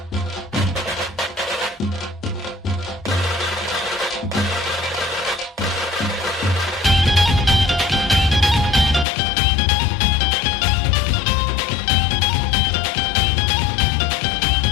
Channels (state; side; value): drops out; right; at 9.1 s